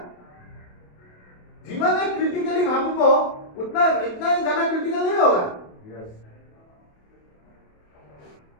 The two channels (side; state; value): right; late; 28 ms